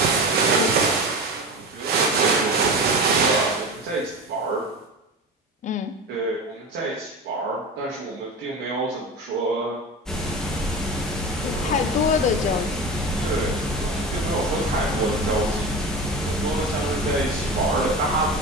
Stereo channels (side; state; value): both; normal; correlation 0.28